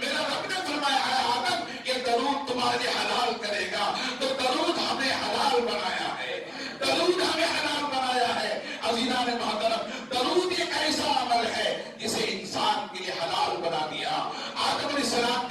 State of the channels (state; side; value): identical; both; correlation 1.00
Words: رب نے فرمایا اے آدم یہ درود تمہارے حلال کرے گا. تو درود ہمیں حلال بنایا ہے، درود ہمیں حلال بنایا ہے. عزیزان محترم درود ایک ایسا عمل ہے جسے انسان کے لیے حلال بنا دیا، آدم علیہ السلام